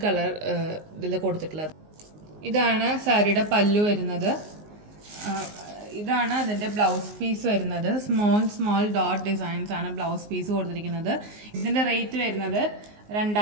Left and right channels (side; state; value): left; late; 19 ms